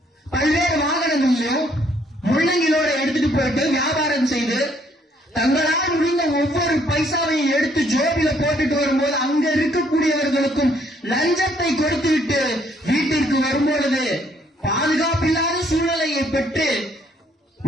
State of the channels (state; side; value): normal; both; correlation 0.67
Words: பல்வேறு வாகனங்களிலும் முள்ளங்கிலோட எடுத்துட்டு போயிட்டு வியாபாரம் செய்து தங்களால் முடிந்த ஒவ்வொரு பைசாவையும் எடுத்து ஜோபில போட்டுட்டு வரும்போது அங்க இருக்கக்கூடியவர்களுக்கும் லஞ்சத்தை கொடுத்துவிட்டு வீட்டிற்கு வரும்பொழுது பாதுகாப்பில்லாத சூழ்நிலையை பெற்று